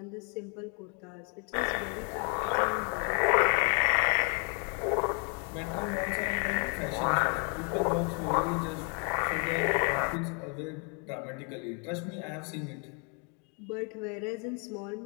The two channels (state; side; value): quieter; right; 37.4 dB